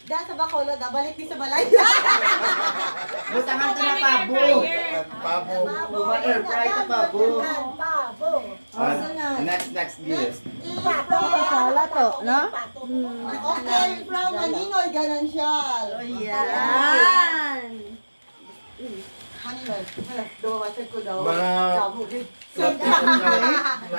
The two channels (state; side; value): inverted; both; correlation -1.00